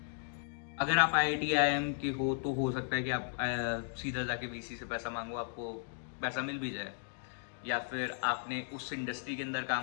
अगर आप आईआईटी आईआईएम के हो तो हो सकता है कि आप सीधा जाके वीसी से पैसा मांगो, आपको पैसा मिल भी जाए। या फिर आपने उस इंडस्ट्री के अंदर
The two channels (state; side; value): silent; right; digital silence